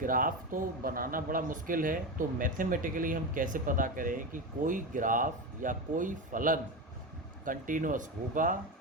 तो बनाना बड़ा मुश्किल है, तो मैथमेटिकली हम कैसे पता करें कि कोई ग्राफ या कोई फलन कंटिन्यूअस होगा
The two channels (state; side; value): normal; both; correlation 0.19